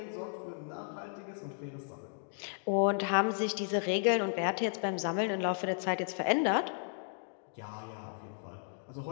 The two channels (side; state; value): right; silent; digital silence